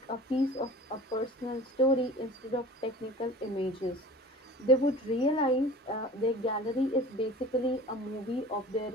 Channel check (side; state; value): both; normal; correlation 0.41